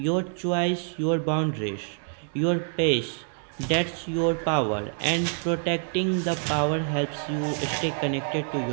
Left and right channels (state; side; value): silent; left; 60 dB below the other